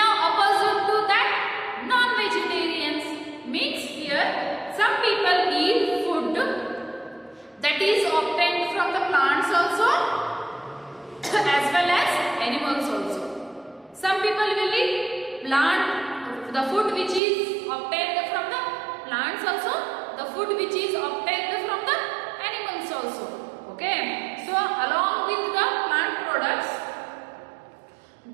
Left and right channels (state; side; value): drops out; left; at 17.2 s